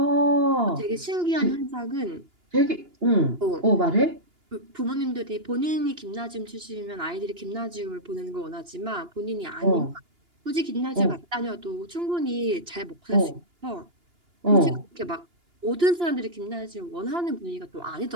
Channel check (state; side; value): late; left; 2.9 ms